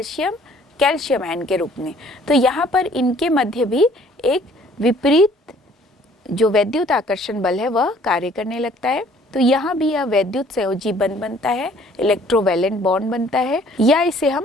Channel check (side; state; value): both; normal; correlation 0.57